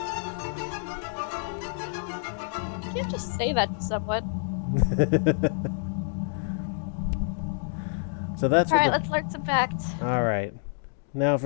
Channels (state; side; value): silent; right; digital silence